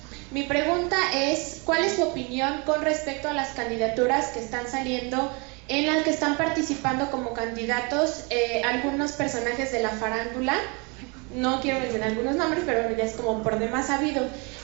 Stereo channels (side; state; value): left; quieter; 30.9 dB